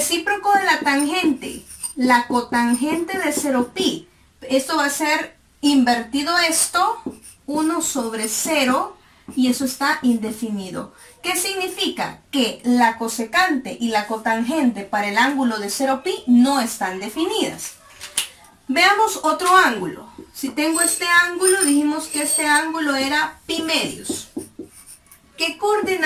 de la tangente, la cotangente de 0pi. Esto va a ser invertido esto, 1 sobre 0, y eso está indefinido. ¿Qué significa? Que la cosecante y la cotangente para el ángulo de 0pi no están definidas. Veamos otro ángulo. Si tengo este ángulo, dijimos que este ángulo era pi medios. ¿Qué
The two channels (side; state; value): both; identical; correlation 1.00